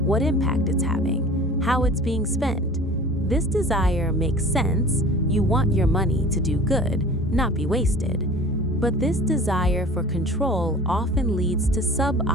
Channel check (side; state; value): both; normal; correlation 0.42